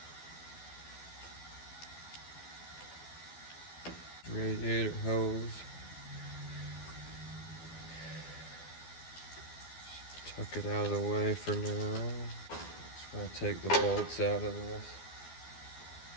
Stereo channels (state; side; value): late; right; 12 ms